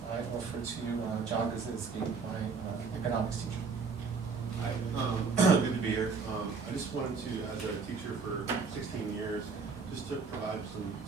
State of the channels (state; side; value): quieter; left; 4.9 dB